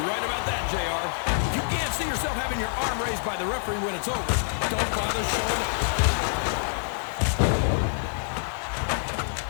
right about that, JR. If you can't see yourself having your arm raised by the referee when it's over, don't bother showing up.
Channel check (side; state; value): right; silent; digital silence